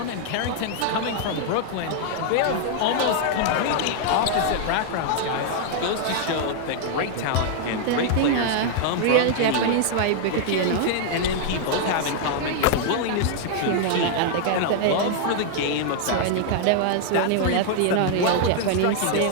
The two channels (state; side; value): different; both; correlation 0.00